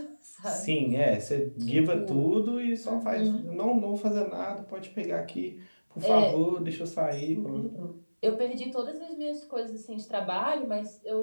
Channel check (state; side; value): inverted; both; correlation -1.00